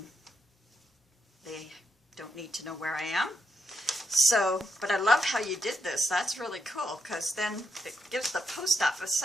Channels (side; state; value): both; normal; correlation 0.81